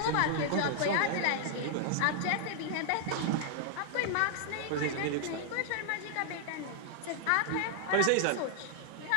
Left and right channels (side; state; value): both; different; correlation 0.00